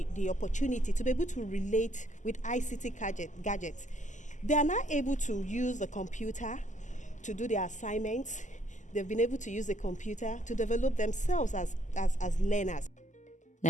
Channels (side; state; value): right; late; 0.36 ms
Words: opportunity to be able to relate with ICT gadgets. They are now able to use the computer to do their assignments. They've been able to use the computer to develop themselves as learners.